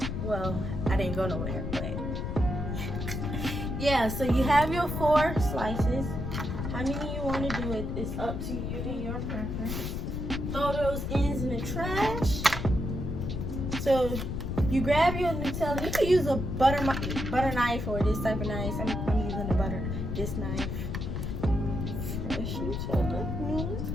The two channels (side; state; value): left; noise; rumble, 3 dB below the sound